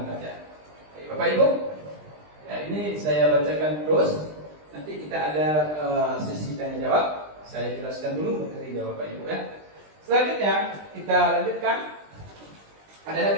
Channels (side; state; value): left; late; 20 ms